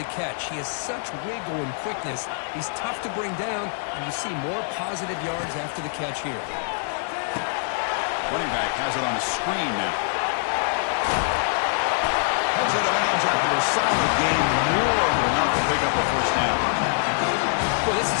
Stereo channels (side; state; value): right; silent; digital silence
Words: catch. He has such wiggle and quickness. He's tough to bring down, and you see more positive yards after the catch here. Running back has it on the screen now. Heads out of bounds after a solid game, more than enough to pick up a first down. Well, this